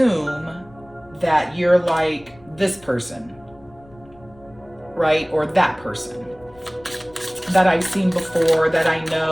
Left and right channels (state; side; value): noise; left; rumble, 26 dB below the sound